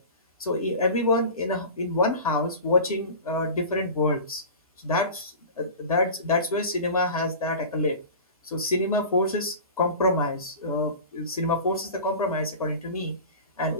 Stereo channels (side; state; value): both; inverted; correlation -0.35